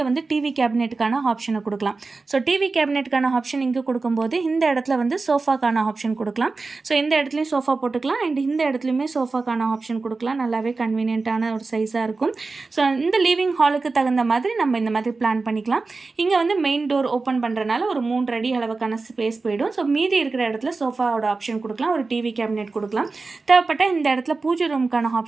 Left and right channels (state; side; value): quieter; left; 3.9 dB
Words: வந்து டிவி கேபினெட்டுக்கான ஆப்ஷனை கொடுக்கலாம். ஸோ டிவி கேபினெட்டுக்கான ஆப்ஷன் இங்க கொடுக்கும்போது இந்த இடத்துல வந்து சோஃபாக்கான ஆப்ஷன் கொடுக்கலாம். ஸோ இந்த இடத்துலையும் சோஃபா போட்டுக்கலாம் அண்ட் இந்த இடத்துலையுமே சோஃபாக்கான ஆப்ஷன் கொடுக்கலாம். நல்லாவே கன்வீனியன்ட்டான ஒரு சைஸாக இருக்கும். ஸோ இந்த லிவிங் ஹாலுக்கு தகுந்த மாதிரி நம்ம இந்த மாதிரி பிளான் பண்ணிக்கலாம். இங்கே வந்து மெயின் டோர் ஓப்பன் பண்ணுறனால ஒரு 3 அடி அளவுக்கான ஸ்பேஸ் போயிடும். ஸோ மீதி இருக்கிற இடத்துல சோஃபாவோட ஆப்ஷன் கொடுக்கலாம், ஒரு டிவி கேபினெட் கொடுக்கலாம். தேவைப்பட்ட இந்த இடத்துல பூஜை ரூமுக்கான